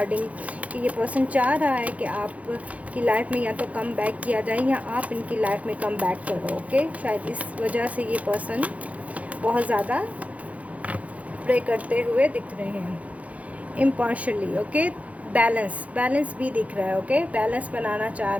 कि ये पर्सन चाह रहा है कि आप की लाइफ में या तो कम बैक किया जाए या आप इनकी लाइफ में कम बैक करो। ओके, शायद इस वजह से ये पर्सन बहुत ज़्यादा प्रे करते हुए दिख रहे हैं इम्पार्शली। ओके, बैलेंस भी दिख रहा है। ओके, बैलेंस बनाना चाह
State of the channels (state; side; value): late; left; 0.067 ms